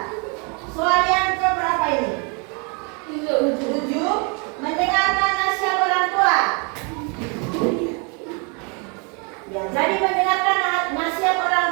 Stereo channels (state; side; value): quieter; left; 34.1 dB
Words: Soal yang ke berapa ini? 7. Mendengarkan nasihat orang tua. Ya, jadi mendengarkan nasihat